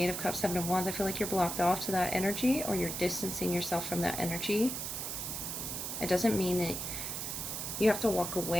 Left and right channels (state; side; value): noise; right; hiss, 4 dB below the sound